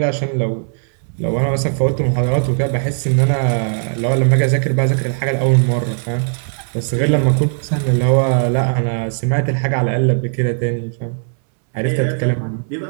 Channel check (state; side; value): silent; left; digital silence